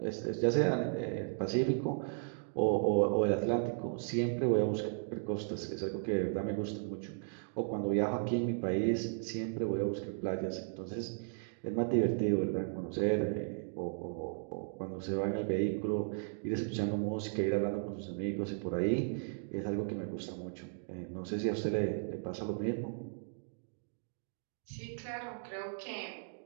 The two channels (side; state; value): left; silent; digital silence